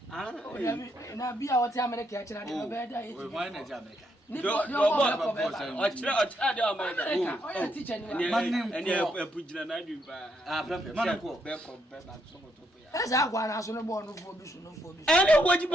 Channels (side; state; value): both; normal; correlation 0.76